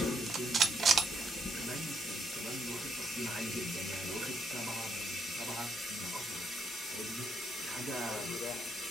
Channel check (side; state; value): both; normal; correlation 0.75